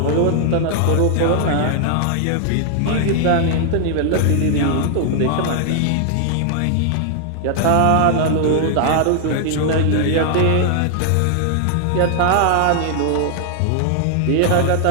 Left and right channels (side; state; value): both; different; correlation 0.00